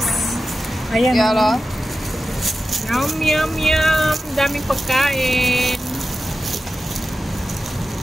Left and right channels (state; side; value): normal; both; correlation 0.93